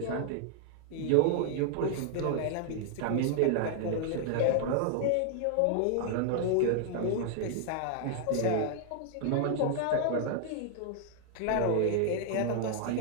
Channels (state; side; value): different; both; correlation 0.00